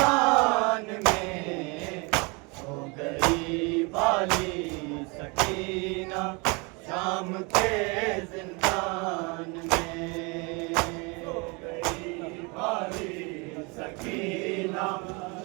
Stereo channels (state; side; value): quieter; left; 29.8 dB